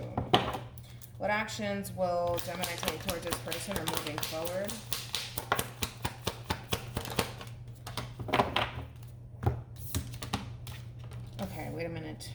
What actions will Gemini take towards this person or moving forward? Okay, wait a minute.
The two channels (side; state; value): both; identical; correlation 1.00